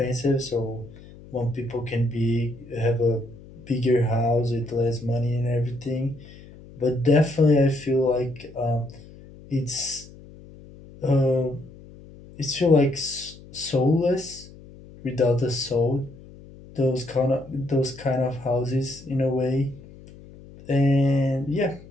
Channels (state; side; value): noise; left; hum, 20 dB below the sound